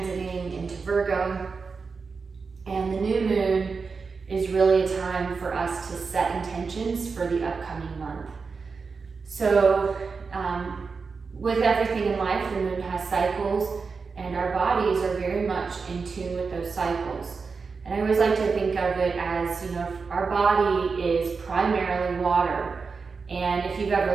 into Virgo, and the new moon is really a time for us to set intentions for the upcoming month. So with everything in life, the moon has cycles, and our bodies are very much in tune with those cycles. And I always like to think of it as, our body is primarily water. And if you've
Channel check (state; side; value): quieter; left; 4.9 dB